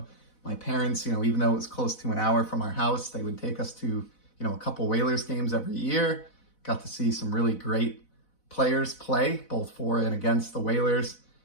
My parents, even though it was close to an hour from our house, they would take us to, a couple Whalers games every year. Got to see some really great players play, both for and against the Whalers.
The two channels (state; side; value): late; right; 4.0 ms